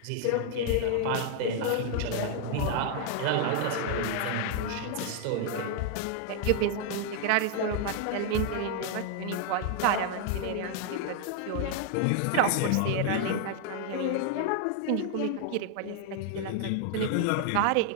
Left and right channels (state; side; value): different; both; correlation 0.00